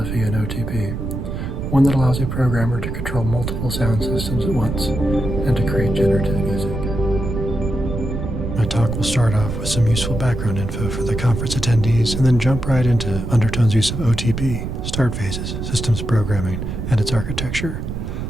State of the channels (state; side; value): noise; right; rumble, 5 dB below the sound